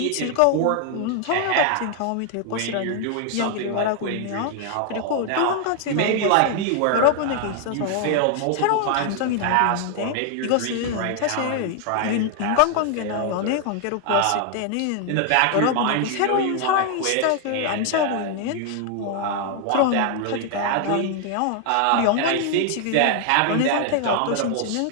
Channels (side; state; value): both; different; correlation 0.00